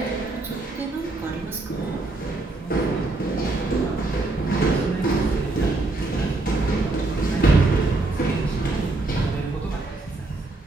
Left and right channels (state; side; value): quieter; left; 3.1 dB